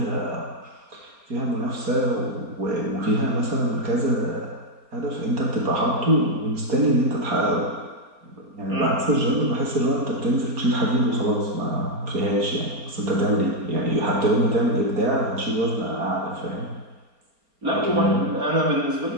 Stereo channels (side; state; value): left; late; 4.3 ms